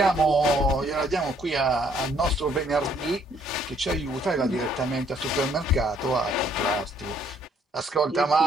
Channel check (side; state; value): both; normal; correlation 0.65